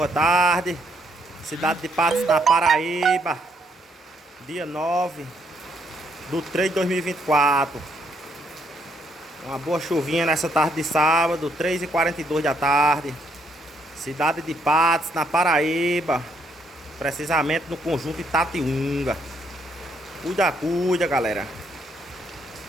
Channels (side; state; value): both; normal; correlation 0.72